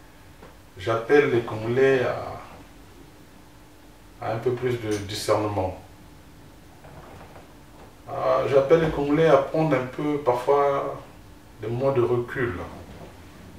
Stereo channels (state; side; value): identical; both; correlation 1.00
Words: J'appelle les Congolais à un peu plus de discernement. J'appelle les Congolais à prendre un peu, parfois, des moments de recul